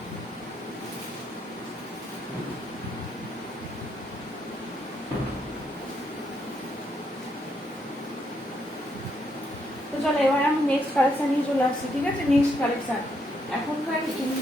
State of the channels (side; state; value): both; normal; correlation 0.76